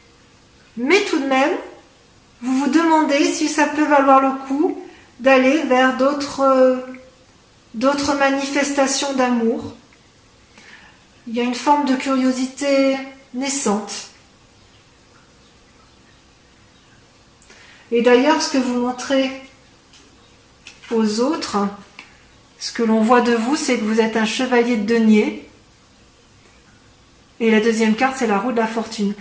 Mais tout de même, vous vous demandez si ça peut valoir le coup d'aller vers d'autres manifestations d'amour. Il y a une forme de curiosité naissante. Et d'ailleurs, ce que vous montrez aux autres, ce que l'on voit de vous, c'est que vous êtes un chevalier de denier. Et la deuxième carte, c'est la roue de la fortune.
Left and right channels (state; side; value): identical; both; correlation 1.00